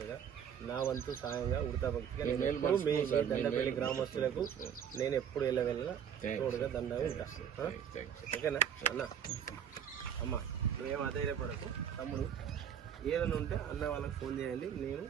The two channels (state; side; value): quieter; left; 8.4 dB